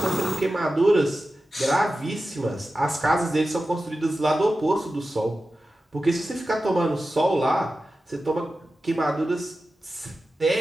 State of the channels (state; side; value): normal; both; correlation 0.93